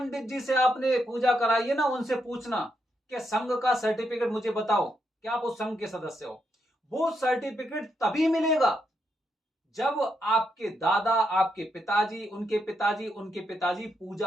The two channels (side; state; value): both; normal; correlation 0.80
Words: जी से आपने पूजा कराई है ना, उनसे पूछना कि संघ का सर्टिफिकेट मुझे बताओ, क्या आप उस संघ के सदस्य हो। वो सर्टिफिकेट तभी मिलेगा जब आपके दादा, आपके पिताजी, उनके पिताजी, उनके पिताजी